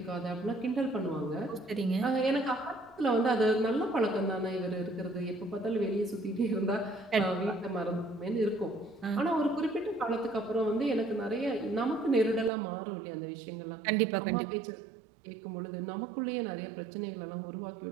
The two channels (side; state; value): left; drops out; at 12.5 s